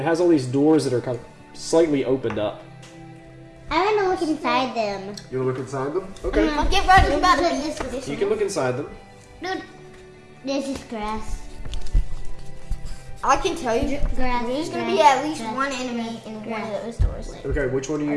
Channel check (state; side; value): identical; both; correlation 1.00